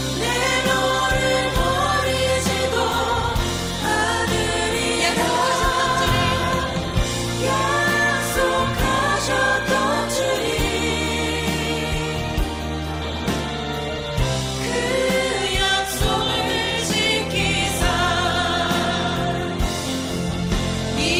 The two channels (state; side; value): identical; both; correlation 1.00